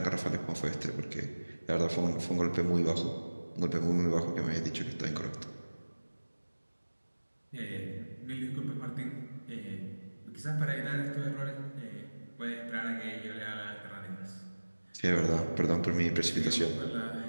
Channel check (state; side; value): inverted; both; correlation -1.00